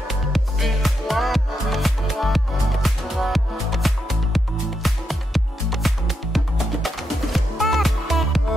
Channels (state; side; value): normal; both; correlation 0.83